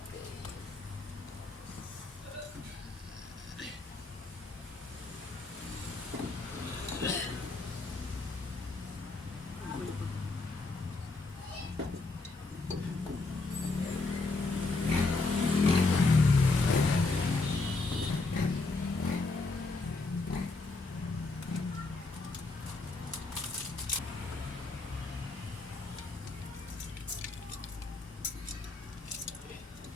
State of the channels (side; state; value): right; quieter; 3.5 dB